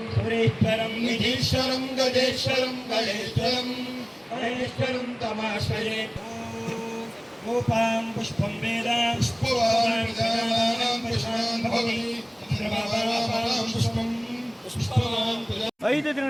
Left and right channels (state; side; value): identical; both; correlation 1.00